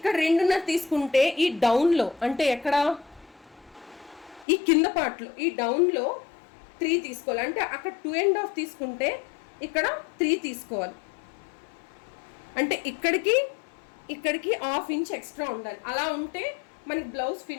2.5 తీసుకుంటే ఈ డౌన్లో అంటే ఎక్కడ ఈ కింద పార్ట్లో ఈ డౌన్లో 3 తీసుకోవాలి. అంటే అక్కడ 2.5 తీసుకుంటే ఇక్కడ 3 తీసుకోవాలి. అంటే ఇక్కడికి 1/2 ఇంచ్ ఎక్స్ట్రా ఉండాలి. అలా ఉంటే మనకి బ్లౌజ్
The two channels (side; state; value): right; drops out; at 4.5 s